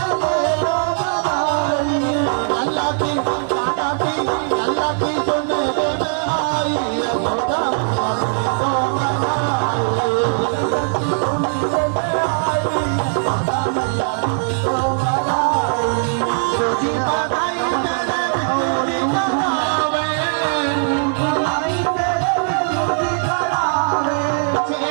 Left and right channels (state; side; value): silent; left; digital silence